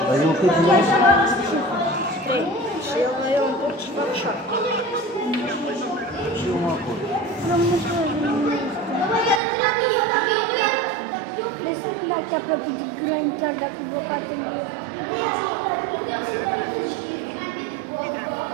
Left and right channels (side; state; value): left; drops out; at 9.4 s